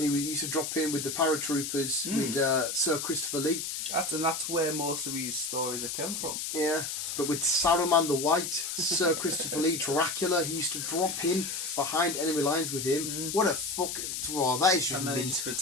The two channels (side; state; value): left; noise; hiss, 4 dB below the sound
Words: He used to drop in with the paratroopers with Sir Christopher Lee. That's where most of these stories have come from. Yeah, but with Saruman the White, Sir Christopher Lee, Dracula, he used to drop in behind enemy lines with him. What a fucking... Oh, that is just And then mint. he just